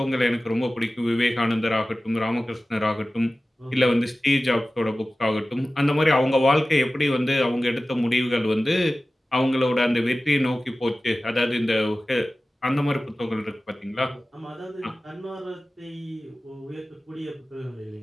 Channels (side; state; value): both; normal; correlation 0.96